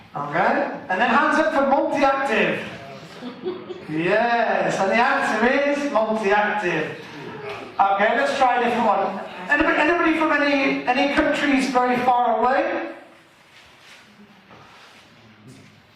Okay, and then hands up for multi-active. Yes, and the answer is multi-active. Okay, let's try a different one. Anybody from any countries very far away?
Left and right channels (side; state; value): both; identical; correlation 1.00